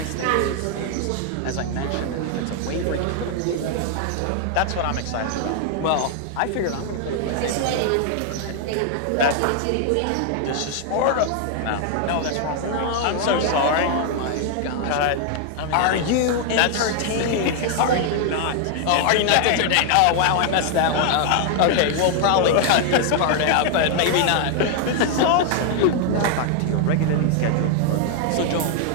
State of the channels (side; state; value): both; different; correlation 0.00